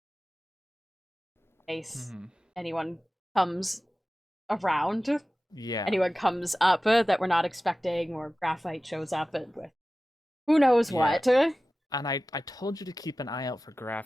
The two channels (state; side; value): normal; both; correlation 0.96